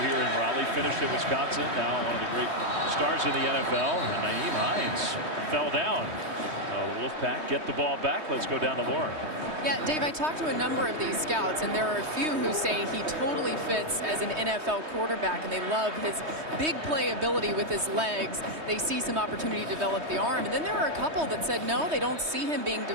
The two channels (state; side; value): late; left; 3.2 ms